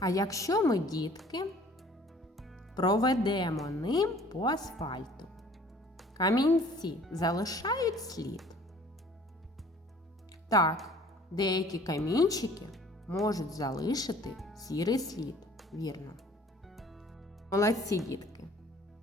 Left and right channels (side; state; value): both; normal; correlation 0.53